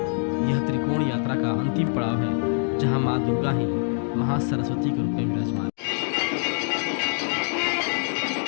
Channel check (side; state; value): right; silent; digital silence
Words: यह त्रिकोण यात्रा का अंतिम पड़ाव है जहाँ माँ दुर्गा ही महासरस्वती के रूप में विराजमान